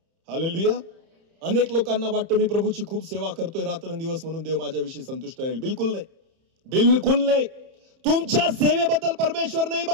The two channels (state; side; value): late; left; 31 ms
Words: हालेलुया. अनेक लोकांना वाटतं मी प्रभूची खूप सेवा करतोय रात्रंदिवस म्हणून देव माझ्याविषयी संतुष्ट राहील. बिलकुल नाही. बिलकुल नाही. तुमच्या सेवेबद्दल परमेश्वर नाही